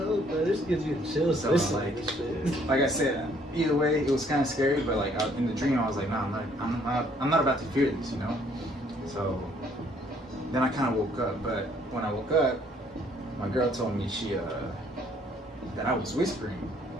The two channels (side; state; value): both; normal; correlation 0.63